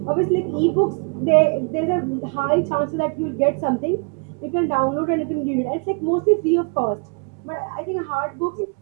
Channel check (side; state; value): left; quieter; 34.9 dB